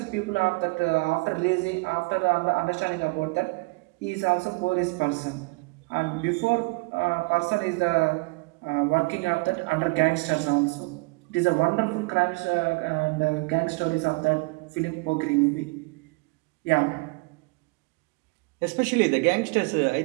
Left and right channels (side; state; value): left; quieter; 27.6 dB